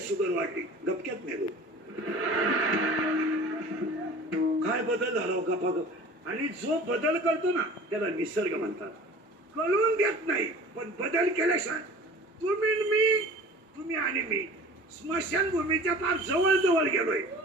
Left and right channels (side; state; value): both; normal; correlation 0.42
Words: शुगर वाढली, गपक्यात मेलो. काय बदल झाला गपागप. आणि जो बदल करतो ना त्याला निसर्ग म्हणतात. कळून देत नाही, पण बदल केल्याशिवाय तुम्ही आणि मी स्मशानभूमीच्या फार जवळ जवळ गेलोय